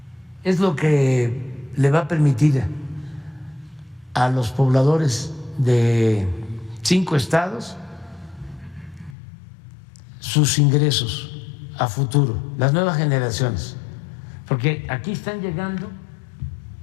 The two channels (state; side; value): drops out; right; at 9.2 s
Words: Es lo que le va a permitir a los pobladores de 5 estados sus ingresos a futuro, las nuevas generaciones, porque aquí están llegando